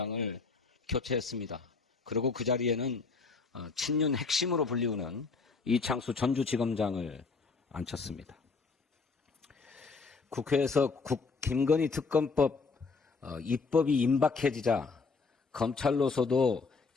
교체했습니다. 그리고 그 자리에는 친윤 핵심으로 불리우는 이창수 전주지검장을 앉혔습니다. 국회에서 김건희 특검법 입법이 임박해지자 검찰로서도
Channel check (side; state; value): right; quieter; 4.5 dB